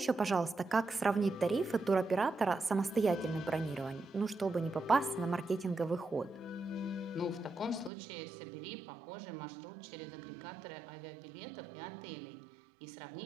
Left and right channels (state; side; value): drops out; left; at 7.9 s